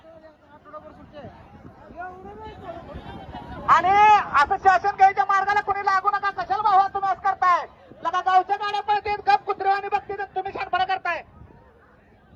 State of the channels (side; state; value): both; identical; correlation 1.00